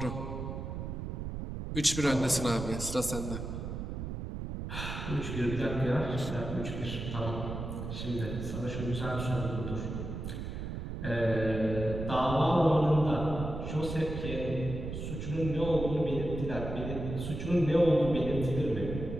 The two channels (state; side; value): noise; right; rumble, 6 dB below the sound